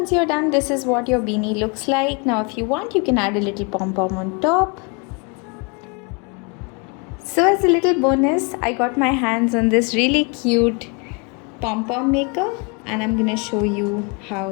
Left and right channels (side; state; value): right; quieter; 32.1 dB